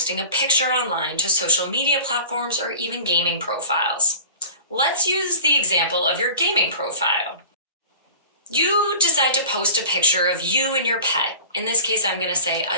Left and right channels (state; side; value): inverted; both; correlation -0.41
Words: a picture online to social media platforms or even gaming profiles. Let's use the example of your gaming profile. You decide to post a picture of you and your pet. In this case, I'm going to say